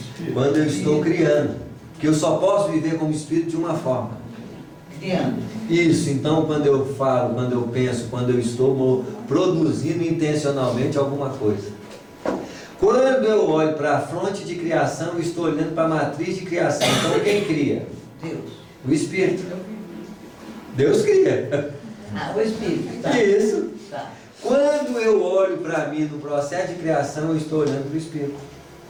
Quando eu estou criando. Porque eu só posso viver como espírito de uma forma. Criando. Isso, então quando eu falo, quando eu penso, quando eu estou produzindo intencionalmente alguma coisa. Quando eu olho para a fronte de criação, eu estou olhando para a matriz de criação. Então quem cria? Deus. O Espírito. Deus cria. Ah, o Espírito. Tá. Isso. Tá. Quando eu olho para mim no processo de criação, eu estou olhando para o Espírito.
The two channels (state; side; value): identical; both; correlation 1.00